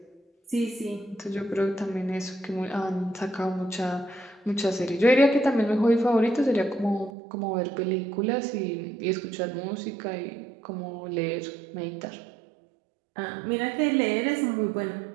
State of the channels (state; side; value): drops out; left; at 7.1 s